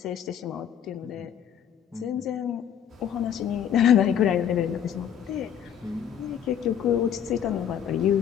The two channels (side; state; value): right; quieter; 9.1 dB